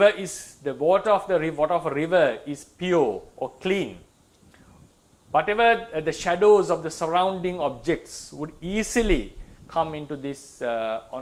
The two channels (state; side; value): identical; both; correlation 1.00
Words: water of a river is pure or clean. Whatever the shadows of the surrounding objects would easily come into this